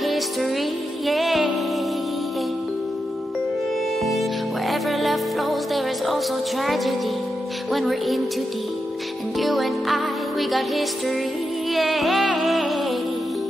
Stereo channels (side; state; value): both; normal; correlation 0.87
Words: yeah. Wherever love flows, there is also tragedy. When we're in too deep, and you and I, we got history, yeah.